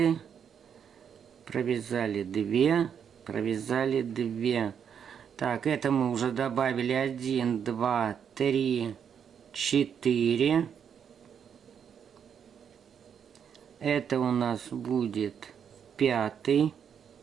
провязали 2, провязали 2. Так, это мы уже добавили 1, 2, 3, 4. Это у нас будет 5.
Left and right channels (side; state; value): left; quieter; 7.8 dB